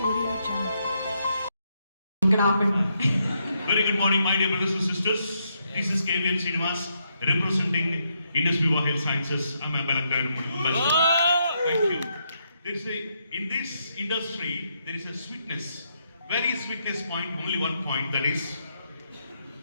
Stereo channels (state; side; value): inverted; both; correlation -0.78